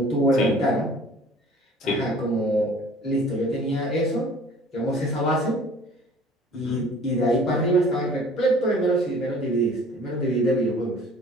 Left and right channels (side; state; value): both; normal; correlation 0.49